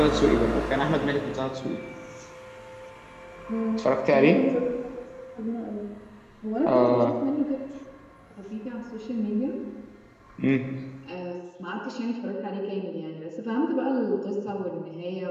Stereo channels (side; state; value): both; identical; correlation 1.00